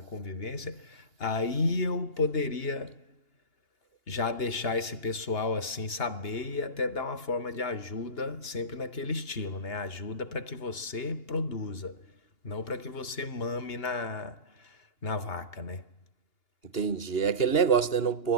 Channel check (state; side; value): late; right; 2.8 ms